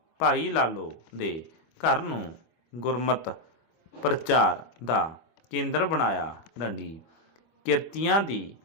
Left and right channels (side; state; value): right; late; 25 ms